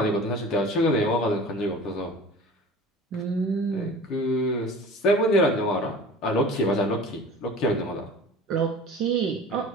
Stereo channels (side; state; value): both; normal; correlation 0.41